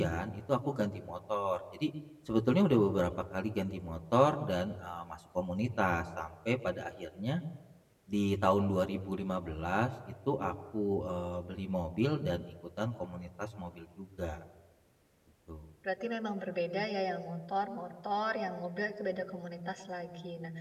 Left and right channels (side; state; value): both; identical; correlation 1.00